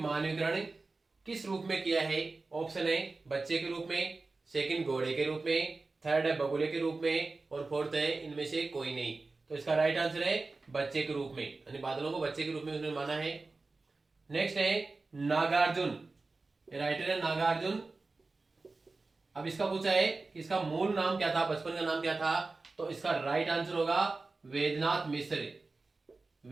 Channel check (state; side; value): quieter; left; 3.6 dB